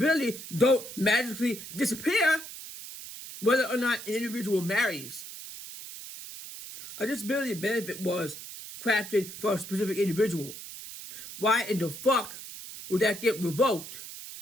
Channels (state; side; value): noise; right; hiss, 12 dB below the sound